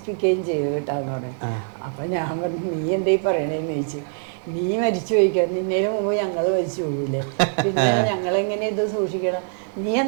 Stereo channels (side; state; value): left; silent; digital silence